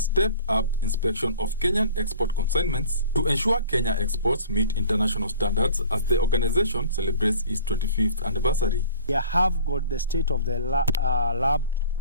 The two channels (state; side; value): inverted; both; correlation -0.46